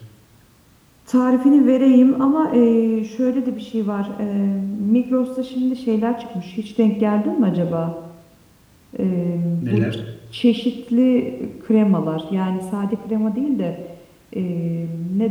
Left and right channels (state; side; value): identical; both; correlation 1.00